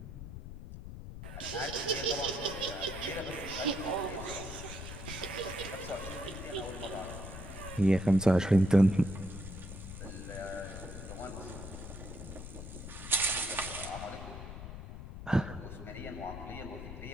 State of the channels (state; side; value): noise; left; rumble, 10 dB below the sound